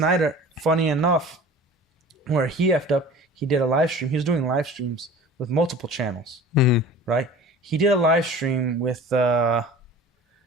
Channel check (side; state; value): both; normal; correlation 0.42